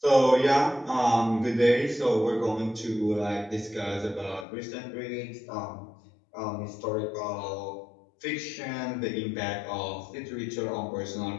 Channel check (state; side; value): drops out; right; at 4.5 s